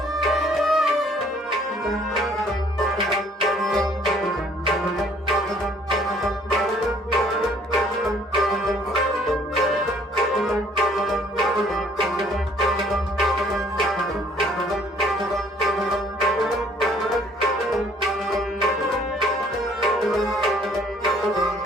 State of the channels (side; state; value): both; normal; correlation 0.59